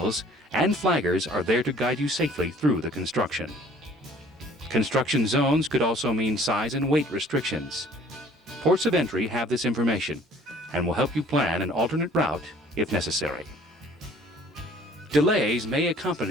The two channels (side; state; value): both; normal; correlation 0.53